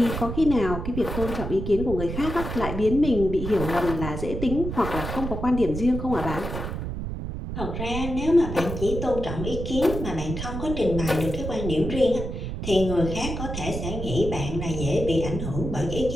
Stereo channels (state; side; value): noise; right; rumble, 5 dB below the sound